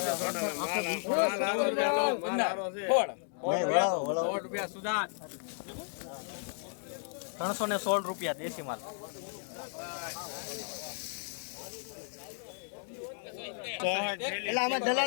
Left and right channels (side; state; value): right; silent; 55 dB below the other